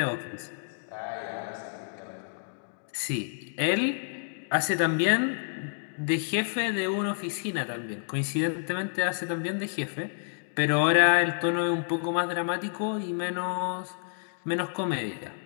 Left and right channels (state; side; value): silent; right; digital silence